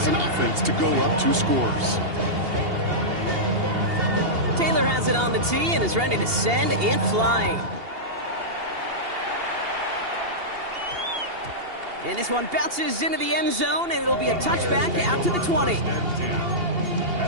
an offense to go up 2 scores. Taylor has it on the tee and is ready to send it flying. And this one bounces into the end zone, and it'll be a touchback out to the 20.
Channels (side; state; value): left; late; 2.8 ms